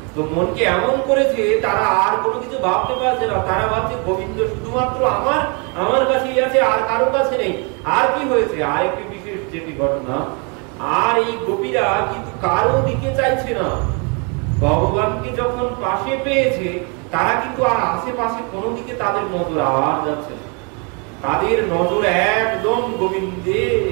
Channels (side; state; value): left; quieter; 34.2 dB